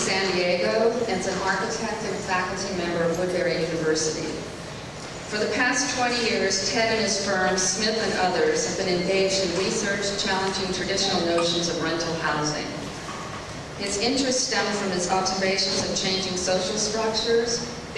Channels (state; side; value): identical; both; correlation 1.00